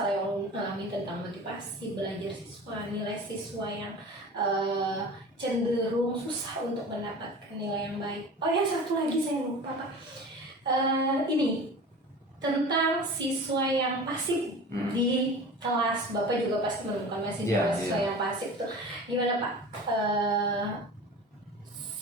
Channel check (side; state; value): both; normal; correlation 0.36